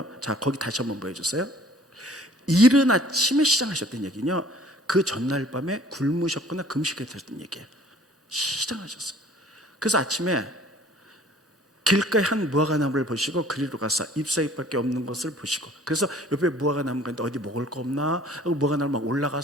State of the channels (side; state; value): both; normal; correlation 0.53